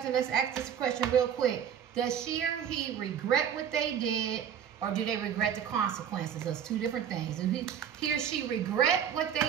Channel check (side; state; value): left; quieter; 8.6 dB